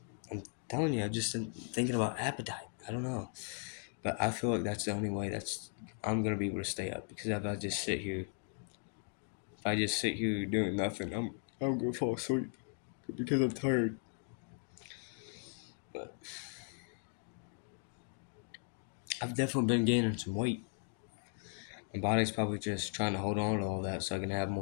telling you, I've just been thinking about appetite. I don't know, but I feel like that's the only way I'm gonna be able to stay up because if I just sit here doing nothing, I'm gonna fall asleep because I'm tired. But I've definitely been gaining some weight. My body's probably just trying to hold on to all that so I can have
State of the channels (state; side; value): silent; right; 53 dB below the other